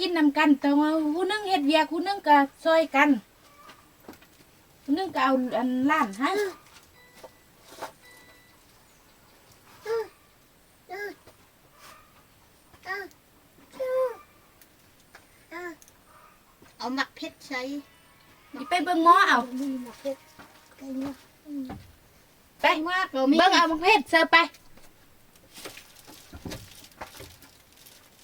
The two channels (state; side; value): identical; both; correlation 1.00